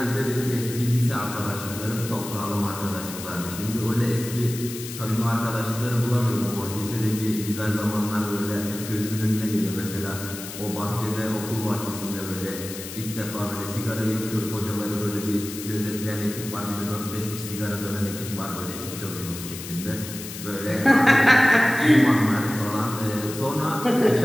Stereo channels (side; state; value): left; noise; hiss, 10 dB below the sound